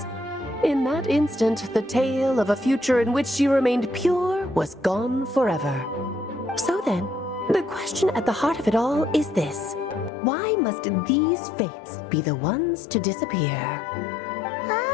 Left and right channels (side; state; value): right; drops out; at 10.1 s